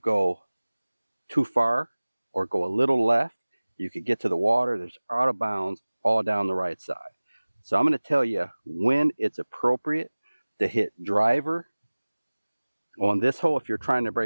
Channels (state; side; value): inverted; both; correlation -1.00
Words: too far or go a little left, you could get to the water. There's out of bounds all down the right side. So I'm going to tell you when it's appropriate to hit driver on this hole if you're trying to